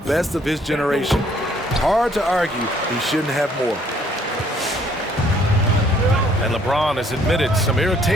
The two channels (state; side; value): normal; both; correlation 0.63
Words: of his generation. Hard to argue he shouldn't have more. And LeBron has admitted some